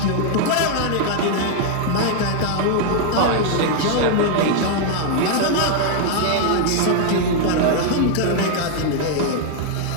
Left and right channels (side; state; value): both; different; correlation 0.00